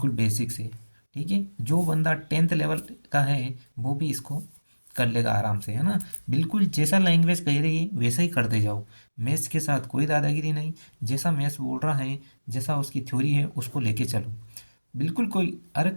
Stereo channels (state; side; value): inverted; both; correlation -1.00